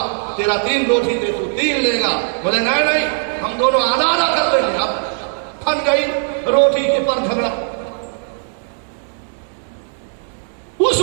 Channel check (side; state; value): left; silent; 64 dB below the other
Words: तेरा 3 रोटी दे, तू 3 लेगा। बोले नहीं नहीं, हम दोनों आधा आधा कर लेंगे। अब फन गई रोटी के पर झगड़ा। उस